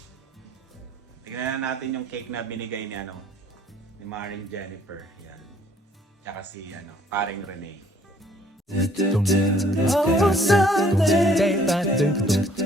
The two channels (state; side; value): normal; both; correlation 0.60